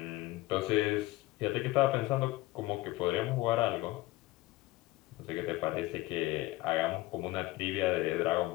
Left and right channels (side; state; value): right; quieter; 18.7 dB